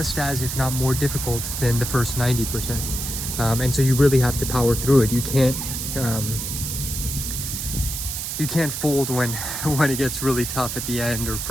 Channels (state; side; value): noise; right; hiss, 4 dB below the sound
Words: as, if not more difficult than the first 90%. And so you really have to power through it. You can't fold when it gets really tough at the end, or